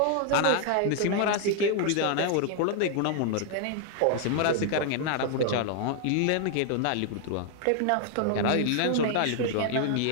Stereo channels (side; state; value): both; different; correlation 0.00